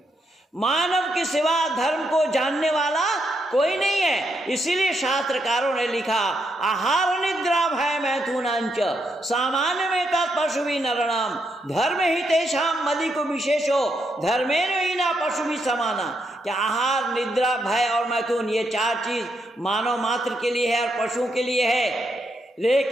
मानव के सिवा धर्म को जानने वाला कोई नहीं है। इसीलिए शास्त्रकारों ने लिखा, आहार निद्रा भय मैथुनांच सामान्य में पशु भी नरणाम धर्म ही तेषाम मदि को विशेषो धर्मेण ही ना पशु भी समाना। क्या आहार, निद्रा, भय और मैथुन, ये चार चीज मानव मात्र के लिए है और पशुओं के लिए है,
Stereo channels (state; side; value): normal; both; correlation 0.79